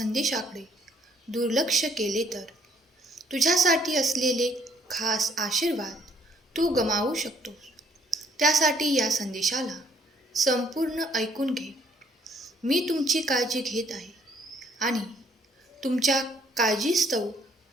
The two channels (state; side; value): normal; both; correlation 0.64